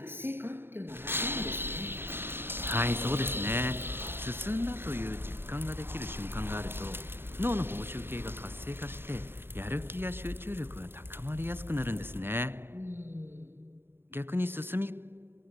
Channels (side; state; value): left; late; 0.11 ms